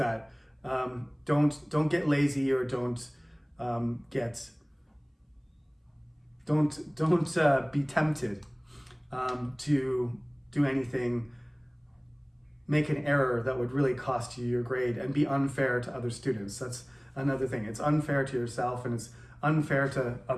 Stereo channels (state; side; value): identical; both; correlation 1.00